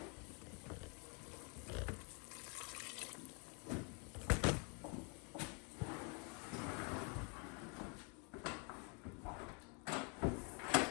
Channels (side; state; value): right; quieter; 35.0 dB